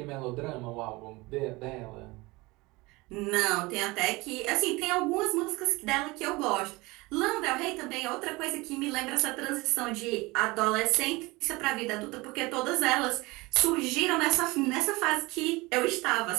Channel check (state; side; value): quieter; left; 22.9 dB